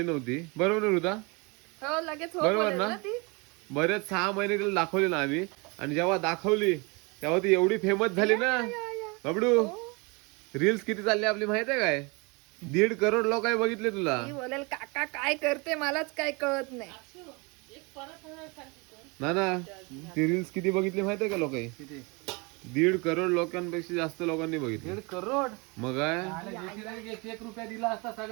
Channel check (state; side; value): quieter; left; 28.9 dB